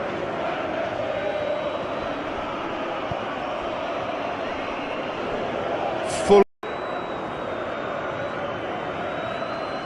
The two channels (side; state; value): both; identical; correlation 1.00